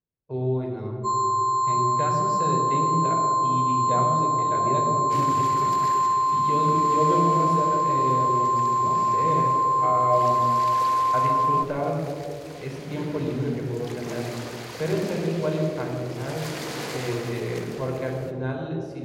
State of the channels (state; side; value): identical; both; correlation 1.00